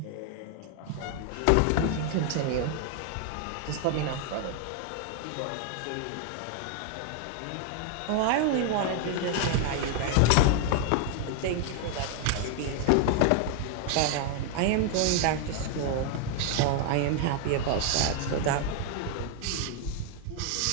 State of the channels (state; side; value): different; both; correlation 0.00